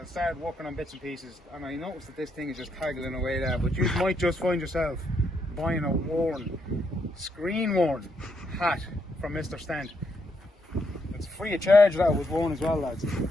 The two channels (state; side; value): normal; both; correlation 0.77